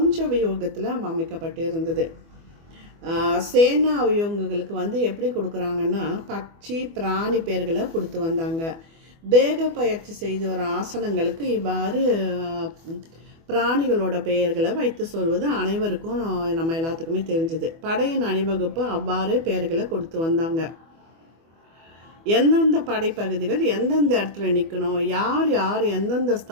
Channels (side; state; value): left; late; 24 ms